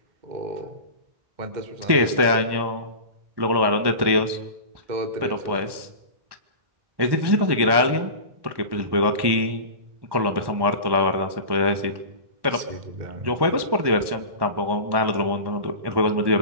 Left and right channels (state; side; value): late; left; 1.1 ms